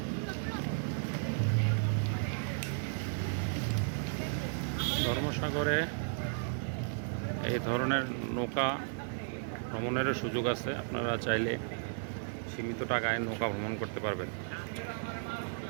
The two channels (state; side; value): silent; left; digital silence